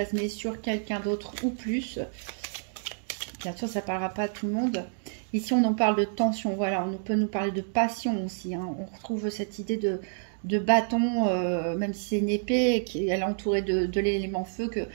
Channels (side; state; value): left; silent; digital silence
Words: sur quelqu'un d'autre ou plus. Bien sûr, ça ne parlera pas à tout le monde. Ici, on en parle de tension, voilà, on peut nous parler de passion aussi, hein. On retrouve cette idée de bâton, même si c'est une épée, elle est entourée de l'élément feu